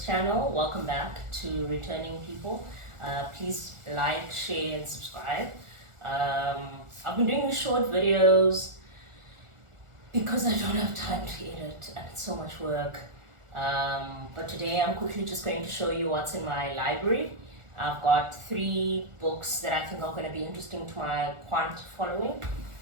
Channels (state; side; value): late; left; 1.4 ms